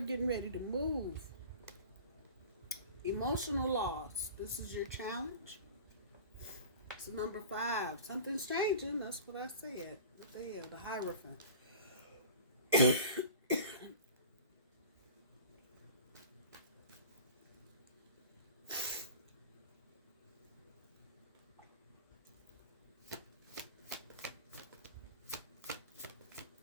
getting ready to move. Emotional loss. This is your challenge. It's number 5. Something's changing. That's what I said. There, the Hierophant.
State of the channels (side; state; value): both; inverted; correlation -0.39